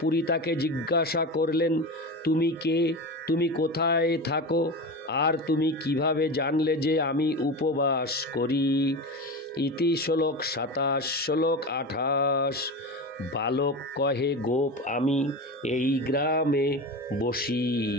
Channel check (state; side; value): normal; both; correlation 0.25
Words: পুরী তাকে জিজ্ঞাসা করলেন, তুমি কে, তুমি কোথায় থাকো, আর তুমি কিভাবে জানলে যে আমি উপবাস করি? ইতি শ্লোক 27। শ্লোক 28। বালক কহে গোপ আমি এই গ্রামে বসি,